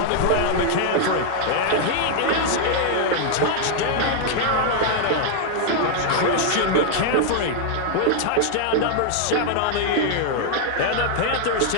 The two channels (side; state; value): both; different; correlation 0.00